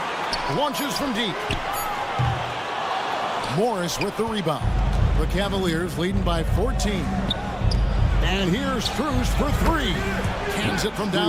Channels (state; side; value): identical; both; correlation 1.00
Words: Launches from deep. Morris with the rebound. The Cavaliers leading by 14. And here's Strus for 3. Cans it from